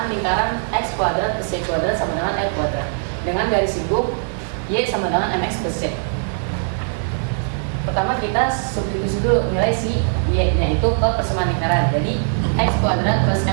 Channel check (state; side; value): silent; left; 61 dB below the other